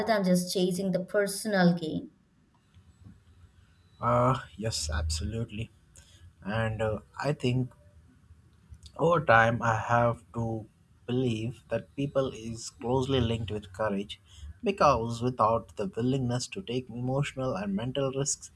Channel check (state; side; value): identical; both; correlation 1.00